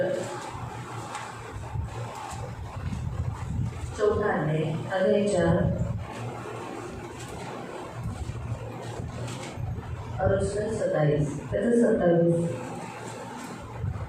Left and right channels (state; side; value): identical; both; correlation 1.00